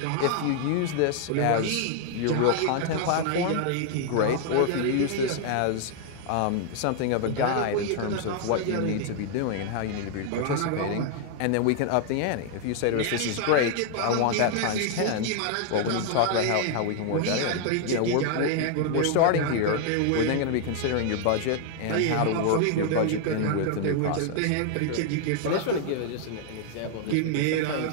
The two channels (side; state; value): both; different; correlation 0.00